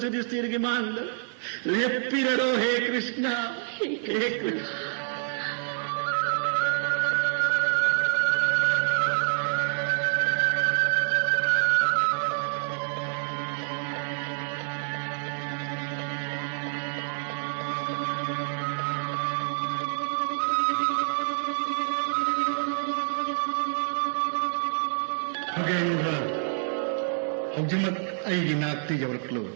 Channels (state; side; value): silent; left; 60 dB below the other